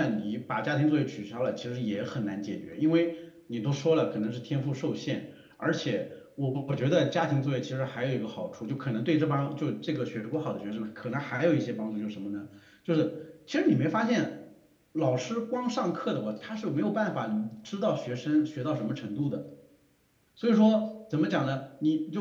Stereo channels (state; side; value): identical; both; correlation 1.00